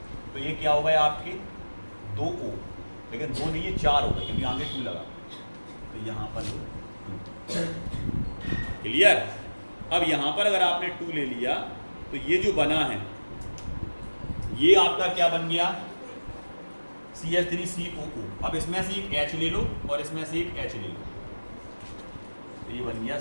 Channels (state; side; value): inverted; both; correlation -1.00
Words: तो ये क्या हो गए आपके 2 O, लेकिन 2 नहीं ये 4 हो गए क्योंकि आगे 2 लगा, तो यहाँ पर लो 2। क्लियर। अब यहाँ पर अगर आपने 2 ले लिया तो ये जो बना है ये आपका क्या बन गया CH3COO। अब इसमें से एक H ले लो और इसमें से एक H ले लो, तो ये बन गया